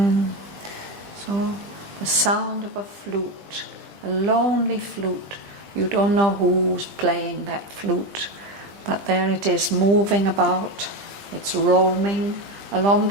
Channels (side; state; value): left; late; 20 ms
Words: So the sound of a flute, a lonely flute. You don't know who's playing that flute, but there it is, moving about. It's roaming along